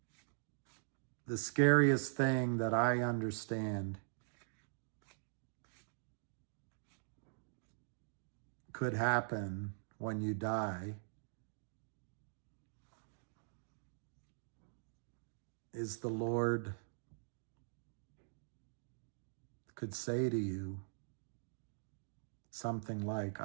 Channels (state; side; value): silent; left; digital silence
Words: the scariest thing that I understand could happen when you die is the Lord could say to you something like,